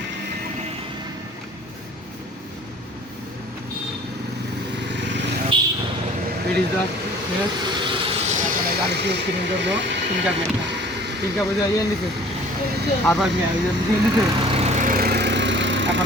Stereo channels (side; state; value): both; normal; correlation 0.49